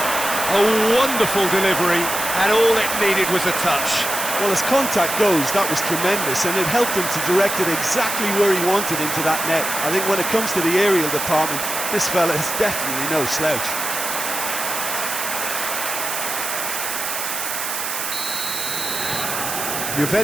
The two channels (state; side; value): noise; right; hiss, 3 dB below the sound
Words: A wonderful delivery, and all it needed was a touch. Well, as contact goes, that was tremendous, and it helped him to direct it exactly where he wanted into that net. I think when it comes to the aerial department, this fella is definitely no slouch.